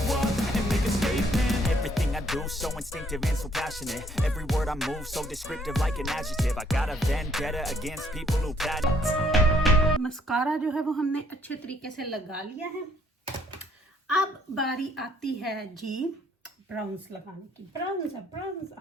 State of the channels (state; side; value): normal; both; correlation 0.66